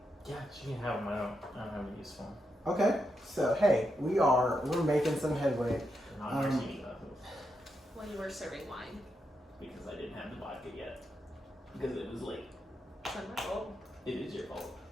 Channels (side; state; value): both; normal; correlation 0.84